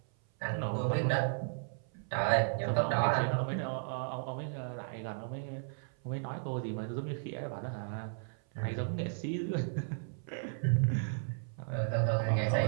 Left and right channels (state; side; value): silent; left; 55 dB below the other